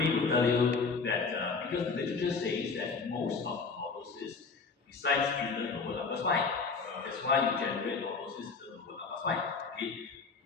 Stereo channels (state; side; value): quieter; right; 4.7 dB